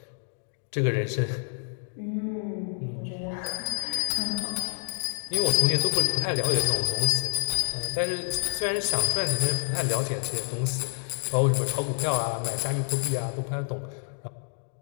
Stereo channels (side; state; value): right; silent; 59 dB below the other